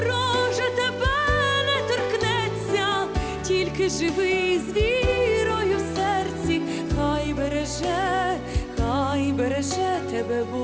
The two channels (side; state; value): both; identical; correlation 1.00